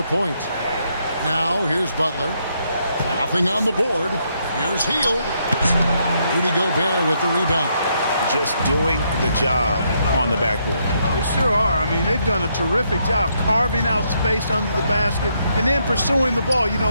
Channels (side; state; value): both; inverted; correlation -0.75